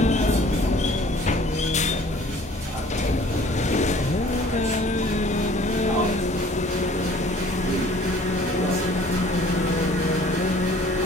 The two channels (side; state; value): both; normal; correlation 0.52